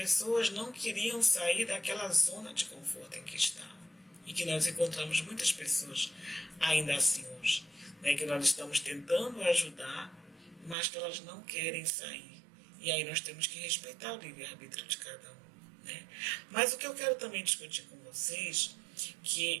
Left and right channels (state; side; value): drops out; left; at 10.8 s